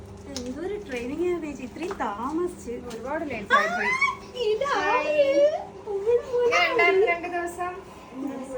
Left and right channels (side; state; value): both; identical; correlation 1.00